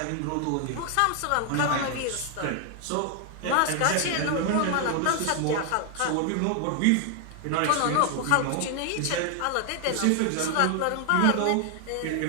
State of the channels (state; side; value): different; both; correlation 0.00